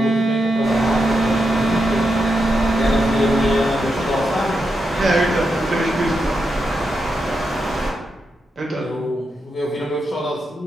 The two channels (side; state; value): both; normal; correlation 0.85